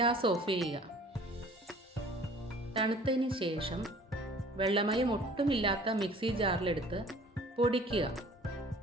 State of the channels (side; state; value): both; normal; correlation 0.50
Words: ഓഫ് ചെയ്യുക. തണുത്തതിന് ശേഷം വെള്ളമയം ഒട്ടുമില്ലാത്ത മിക്സി ജാറിലെടുത്ത് പൊടിക്കുക.